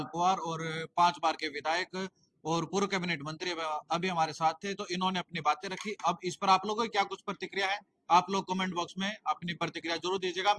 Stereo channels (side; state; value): both; identical; correlation 1.00